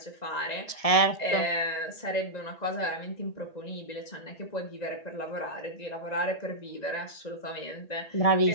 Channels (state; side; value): late; right; 1.7 ms